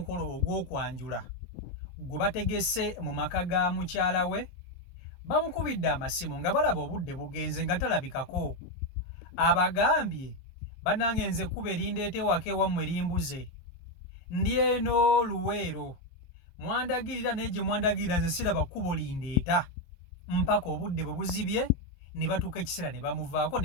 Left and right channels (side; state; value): right; late; 23 ms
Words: ogw'okwanjula gwe bategese mu maka ga mukyala we, bamukubidde amasimu nga balaba obudde bugenze nga talabikako. Abagambye bannange nze ekkubo erindeeta ewaka ewammwe limbuze, ndi eno Luweero, mwandagirira naye gye mwandagirira nze siraba kkubo lindeeta, mpaka obudde bwe buzibye ne batuuka ekiseera ne bamuvaako